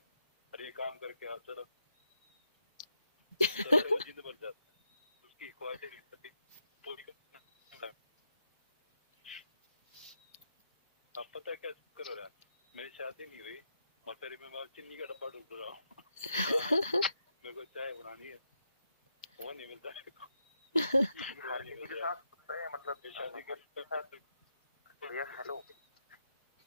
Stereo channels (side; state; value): both; inverted; correlation -0.81